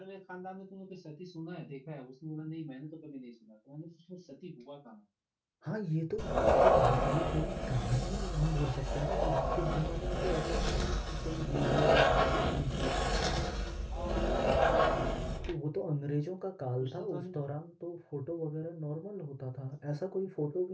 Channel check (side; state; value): both; identical; correlation 1.00